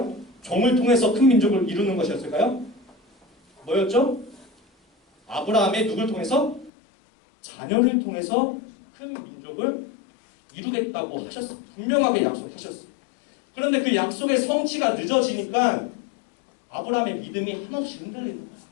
종을 통해서 큰 민족을 이루는 것이었을까요? 뭐였죠? 아브라함의 누굴 통해서? 자녀를 통해서 큰 민족을 이루겠다고 하셨어. 분명하게 약속하셨어. 그런데 그 약속의 성취가 늦어지니까 아브라함의 믿음이 한없이 흔들리는 거야.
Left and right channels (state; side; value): drops out; right; at 6.7 s